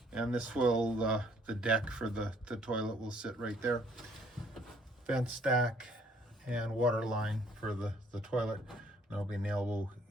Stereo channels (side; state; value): both; normal; correlation 0.62